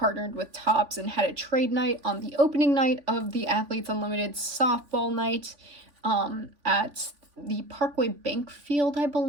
with Topps and had a trade night on the opening night of the Athletes Unlimited softball night at the Parkway Bank Field, I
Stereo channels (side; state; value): left; late; 3.5 ms